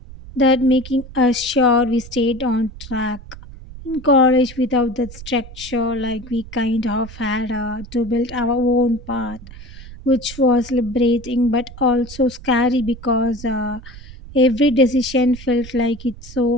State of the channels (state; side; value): noise; right; rumble, 16 dB below the sound